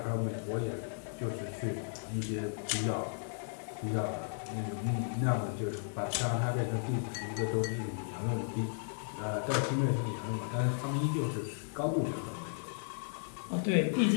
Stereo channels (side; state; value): right; silent; 55 dB below the other